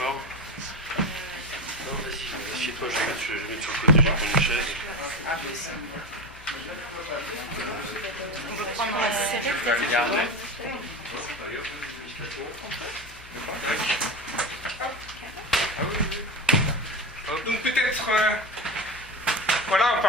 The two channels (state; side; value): noise; left; hum, 20 dB below the sound